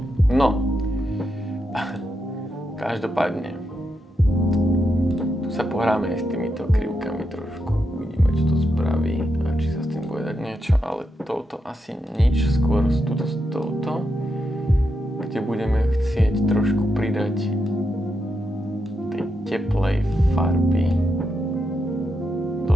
No, každopádne, tu sa pohráme aj s týmito krivkami trošku, uvidíme, čo to spraví a či sa s tým bude dať niečo, ale touto asi nič, skôr s touto, kde budeme chcieť trošku pridať tej teplej farby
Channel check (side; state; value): both; normal; correlation 0.84